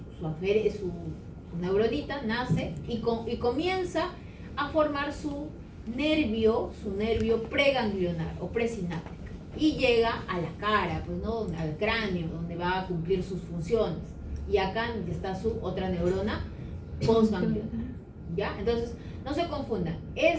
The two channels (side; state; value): both; identical; correlation 1.00